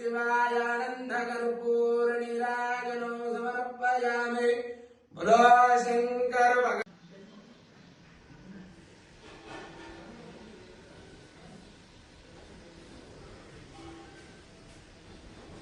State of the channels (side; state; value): both; identical; correlation 1.00